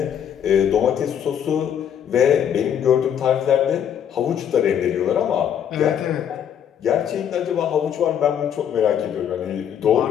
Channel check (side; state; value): right; quieter; 9.0 dB